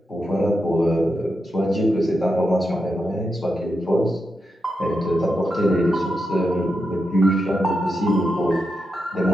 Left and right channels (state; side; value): normal; both; correlation 0.86